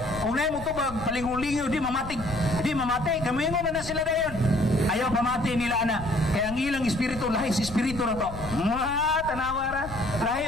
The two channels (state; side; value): noise; left; rumble, 12 dB below the sound